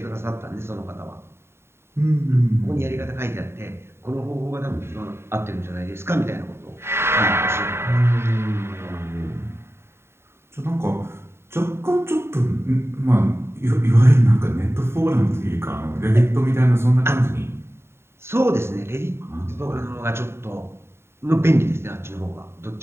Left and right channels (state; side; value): late; left; 0.12 ms